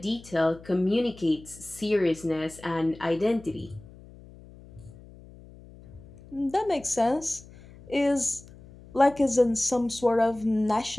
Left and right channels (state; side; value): noise; left; hum, 20 dB below the sound